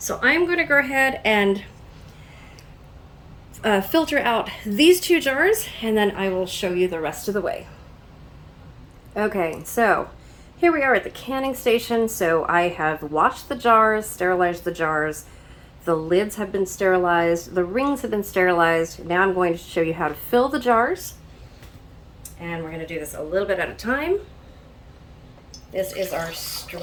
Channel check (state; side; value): identical; both; correlation 1.00